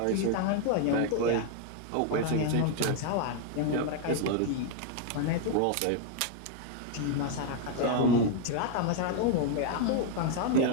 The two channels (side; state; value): both; different; correlation 0.00